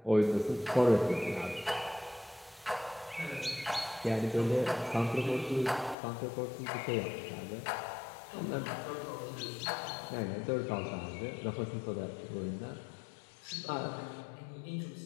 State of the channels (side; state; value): right; drops out; at 6.0 s